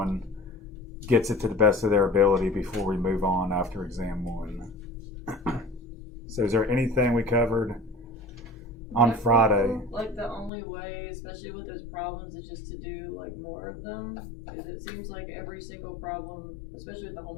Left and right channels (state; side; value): drops out; right; at 10.5 s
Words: gets it to the best of their ability before we move on after exam one. So is there anything we covered on Friday? Like the only way, especially with those problems, is just to do like more of them, because it seems like every single problem, especially with the